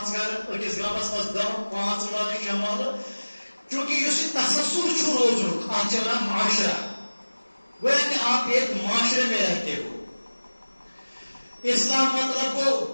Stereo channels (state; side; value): inverted; both; correlation -1.00